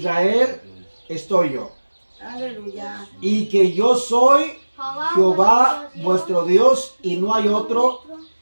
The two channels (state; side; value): inverted; both; correlation -1.00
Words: estoy yo, Aleluya. y que yo soy Jehová vuestro Dios y no hay otro,